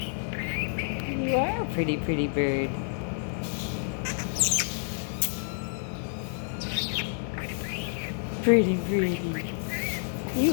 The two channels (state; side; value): silent; right; 59 dB below the other